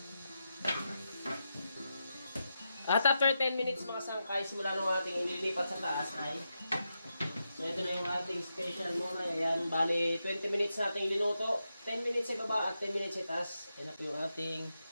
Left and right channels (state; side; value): inverted; both; correlation -0.87